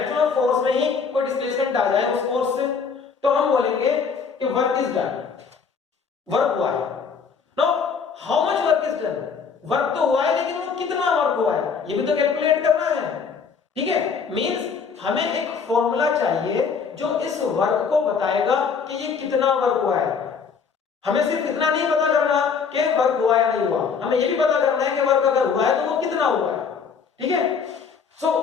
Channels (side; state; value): right; quieter; 5.8 dB